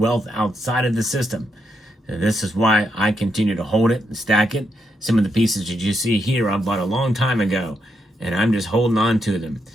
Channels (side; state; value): both; normal; correlation 0.80